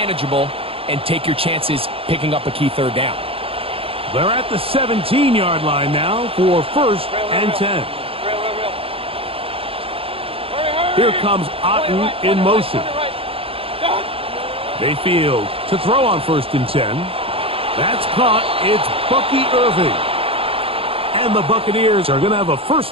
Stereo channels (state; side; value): late; left; 0.27 ms